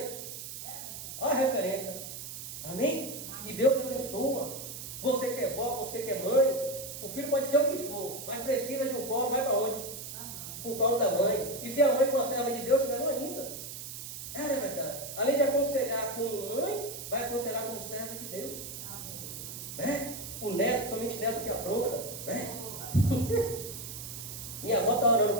Olha a referência. Amém? E Deus abençoa. Você que é vó, você que é mãe, o filho pode ser o que for, mas precisa de um colo, vai para onde? O colo da mãe. E se a mãe for a serva de Deus, melhor ainda. É verdade. Além de aconselhar como mãe, vai aconselhar como serva de Deus. Né? O neto, somente neto que apronta. Né? Minha avó está orando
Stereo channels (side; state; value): right; noise; hiss, 9 dB below the sound